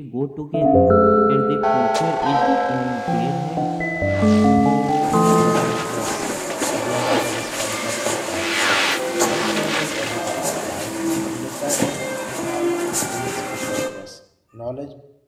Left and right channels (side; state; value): both; identical; correlation 1.00